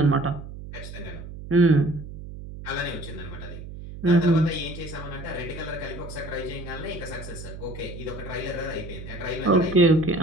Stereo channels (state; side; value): noise; right; hum, 11 dB below the sound